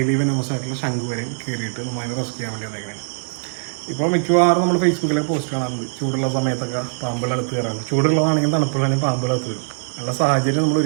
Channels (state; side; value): silent; left; 65 dB below the other